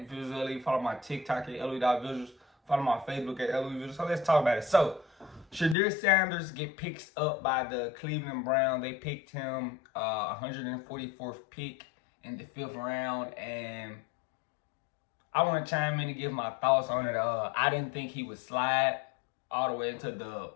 Visually. Follow my TikTok at LOE.Visuals. Follow my Facebook at LOE Visuals. So let's talk about it. So, Shadeur Sanders get picked up by the Cleveland Browns. They picked him 144th pick in the 5th round, and I want to chime in and give my thoughts on it. I didn't think he would slide all the way into the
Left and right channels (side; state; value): right; drops out; at 5.8 s